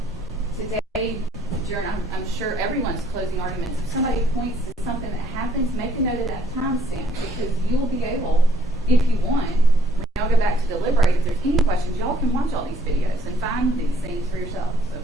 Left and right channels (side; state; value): both; normal; correlation 0.65